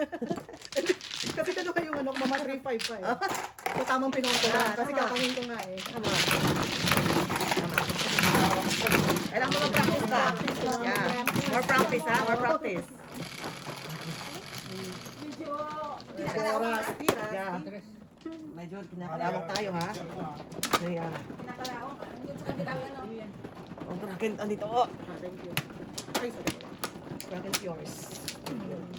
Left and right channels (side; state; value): both; identical; correlation 1.00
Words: Kasi dalawa yung ano, mama 3-5 pa eh. So tamang pinoto Ah, Kasi tama. kakawin ko nga eh. Tama. Tama. Kailangan mo mag-practice ka. Yeah. More practice, ha? More practice. Oras. Yeah. Medyo kinakalawang tayo, ha? Yeah. Pinakalaong. Yun sa kabilang ano. Oh, bracket, andito. Oh, Ah, thank you. Ay, sorry. bracket yours.